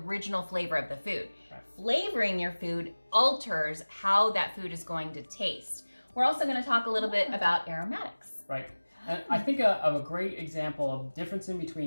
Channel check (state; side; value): inverted; both; correlation -1.00